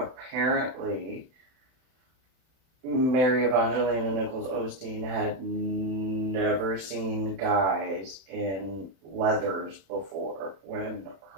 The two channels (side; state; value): left; late; 31 ms